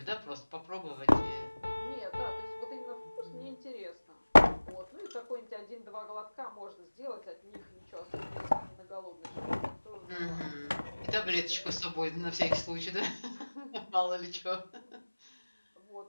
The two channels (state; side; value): inverted; both; correlation -1.00